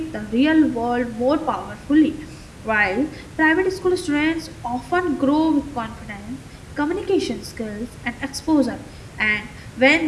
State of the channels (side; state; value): both; identical; correlation 1.00